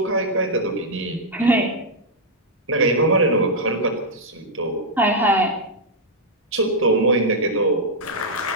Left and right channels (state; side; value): normal; both; correlation -0.05